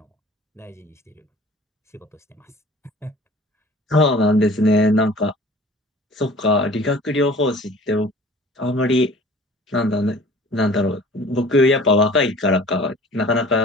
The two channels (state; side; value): normal; both; correlation 0.46